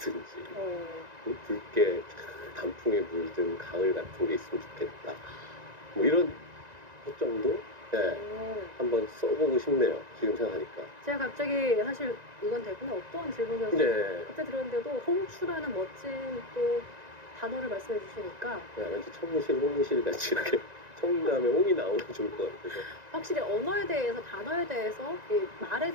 붉게 단풍에 물든 가을 같은 게 있으면 좋겠다. 뭐 이런 것 정도? 한번 써보고 싶네요. 지금 생각하니까. 제가 갑자기 사실 이건 대본에 없던 질문이어서 그때 들었는데도 홍추라는 멋진 또 단어를 말씀해 주시니까 왠지 청실, 홍실 같이 이렇게 청담에 홍이 나오면 좋을 것 같아서. 확실히 언어에 대해서, 단어에 대해서, 이 말에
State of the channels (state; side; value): late; left; 1.9 ms